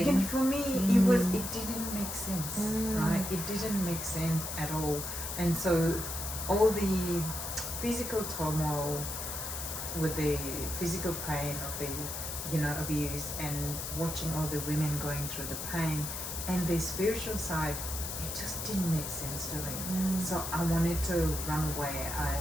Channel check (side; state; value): left; noise; hiss, 5 dB below the sound